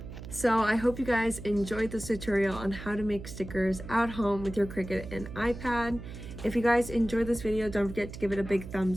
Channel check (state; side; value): noise; right; hum, 11 dB below the sound